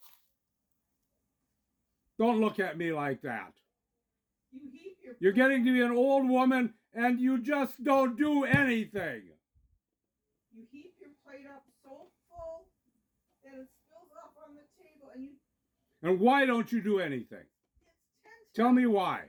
Don't look at me like that. you heap your. You're getting to be an old woman, and you just don't do anything. You heap your plate up so full that it spills up on the table, and you. And why don't you do anything? It's 10 Tell times me what why. I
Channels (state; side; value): identical; both; correlation 1.00